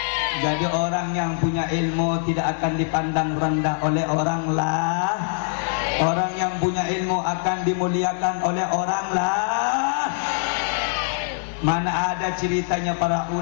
Jadi orang yang punya ilmu tidak akan dipandang rendah oleh orang lah. Orang yang punya ilmu akan dimuliakan oleh orang lah. Mana ada ceritanya para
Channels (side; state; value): right; silent; 63 dB below the other